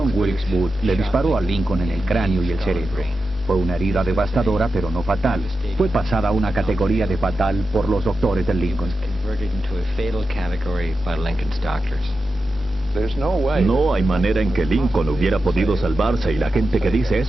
Wilkes Booth le disparó a Lincoln en el cráneo y el cerebro. Fue una herida devastadora, pero no fatal. Fue pasada a una categoría de fatal por los doctores de Lincoln. No hay manera en que Lincoln hubiera podido salvarse y la gente que dice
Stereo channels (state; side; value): normal; both; correlation 0.91